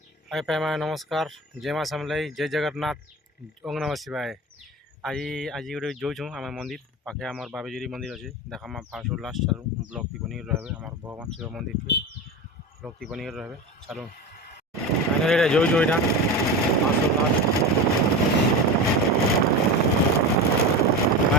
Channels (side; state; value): both; normal; correlation 0.26